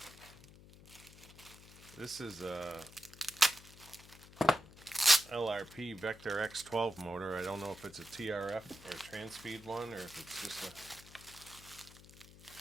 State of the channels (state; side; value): noise; left; hum, 20 dB below the sound